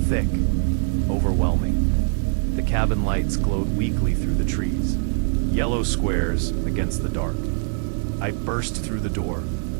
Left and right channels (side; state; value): left; silent; 63 dB below the other